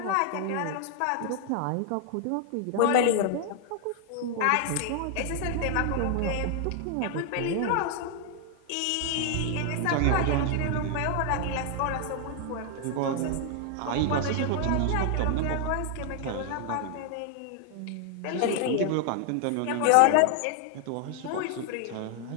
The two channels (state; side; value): different; both; correlation 0.00